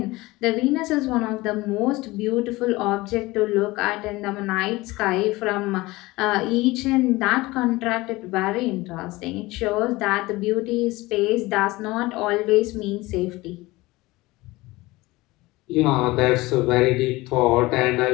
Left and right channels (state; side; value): quieter; right; 20.5 dB